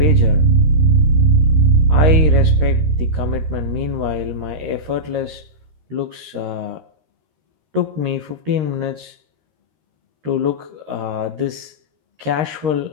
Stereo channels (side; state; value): left; late; 13 ms